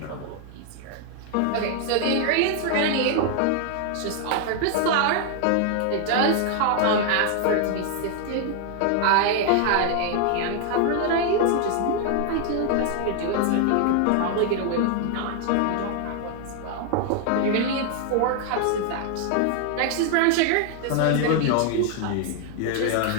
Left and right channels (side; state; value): both; different; correlation 0.00